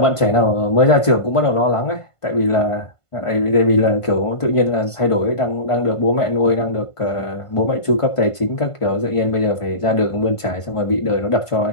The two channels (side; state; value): right; late; 1.5 ms